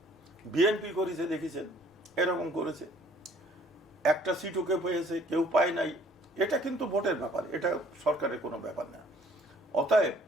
বিএনপি করেছে, দেখেছেন এরকম করেছে। একটা সিটও কেউ পেয়েছে, কেউ পায় নাই। এটা কিন্তু ভোটের ব্যাপার, এটা সরকারের কোনো ব্যাপার না। অতএব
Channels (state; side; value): normal; both; correlation 0.58